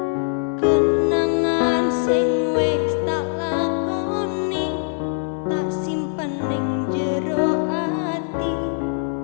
kenangan sing wis tak lakoni tak simpen ning jero ati,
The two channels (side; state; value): right; silent; 58 dB below the other